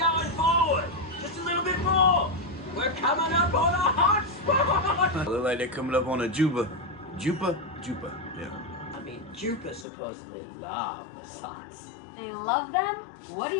forward. Just a little bit more. We're coming up on a hot spot. Look like they're coming up on a Juba. Jupa? Yeah. I mean, Jupiter supposedly love the sights. They love them? What do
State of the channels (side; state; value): right; drops out; at 9.9 s